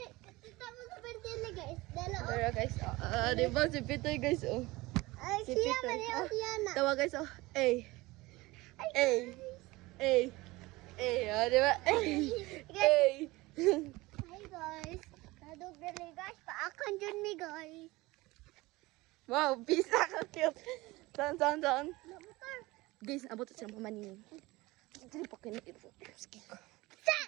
Pero guys, di ba si Pitoy guys, oh. Si Pitoy. Tawa guys, oh. Ay. Ay. Ay. Ay, di ba? Ay. Ay. Hi guys. Kadug dali guys, paakan dyan mi guys. Wow, pisa ka cute. Saan? Motor. Guys, abot sa mga manining. Dili pa kinit. Sige ko. Sa!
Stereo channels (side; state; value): left; quieter; 20.9 dB